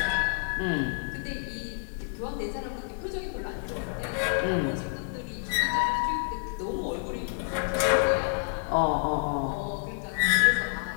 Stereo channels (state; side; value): silent; right; 59 dB below the other